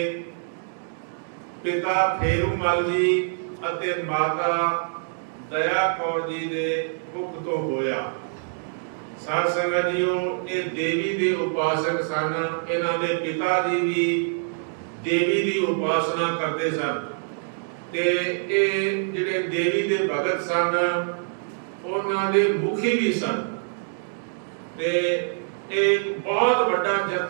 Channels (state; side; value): silent; left; digital silence